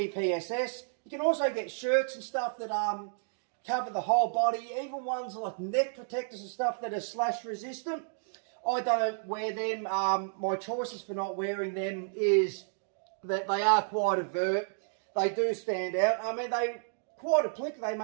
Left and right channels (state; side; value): silent; left; digital silence